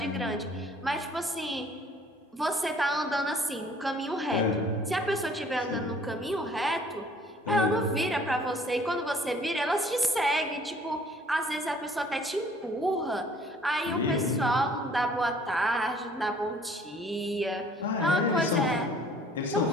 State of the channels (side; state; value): both; normal; correlation 0.56